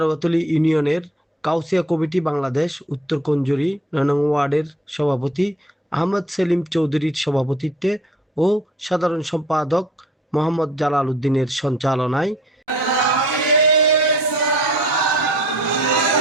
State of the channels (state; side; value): normal; both; correlation 0.53